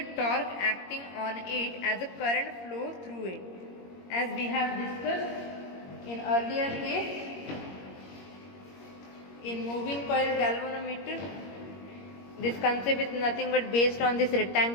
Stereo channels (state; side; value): late; right; 21 ms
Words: torque acting on it as a current flow through it. As we have discussed in earlier case, in moving coil galvanometer, this concept is nothing but based on this